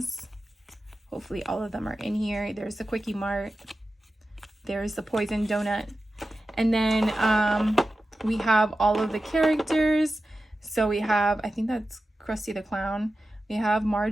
Hopefully all of them are in here. There's the Quickie Mart. There's the Poison Donut. And then we have all of the characters. So we have, I think that's Krusty the Clown. We have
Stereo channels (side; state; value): both; normal; correlation 0.93